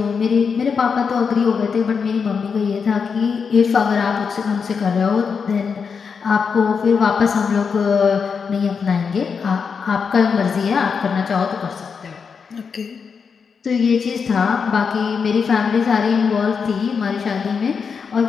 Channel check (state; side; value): quieter; right; 5.9 dB